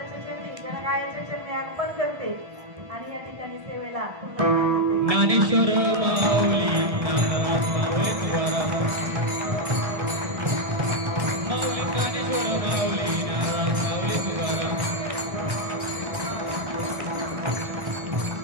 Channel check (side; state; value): left; late; 1.7 ms